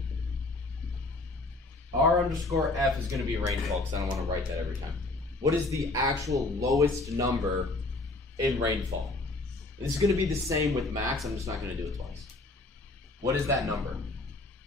R_F is going to be rainfall because I don't want to write that every time. What is the actual lowest number in rainfall? This is going to be the same with max. I'm just not going to do it twice. What is that number?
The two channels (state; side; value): quieter; right; 3.1 dB